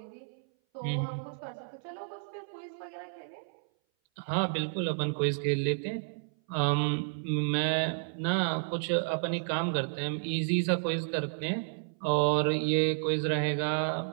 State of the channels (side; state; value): left; silent; 57 dB below the other